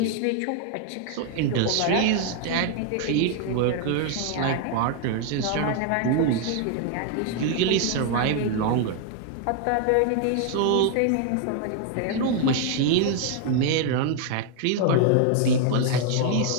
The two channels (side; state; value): both; different; correlation 0.00